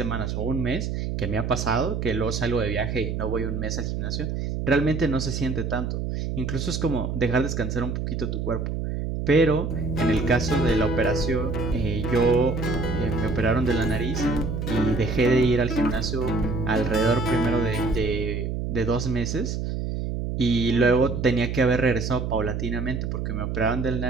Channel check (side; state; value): right; noise; hum, 3 dB below the sound